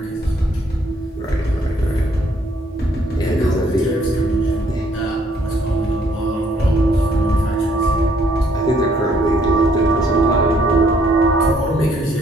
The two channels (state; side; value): normal; both; correlation 0.66